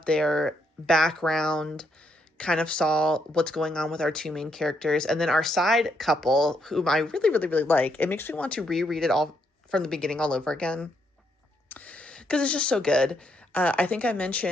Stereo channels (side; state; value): both; normal; correlation 0.76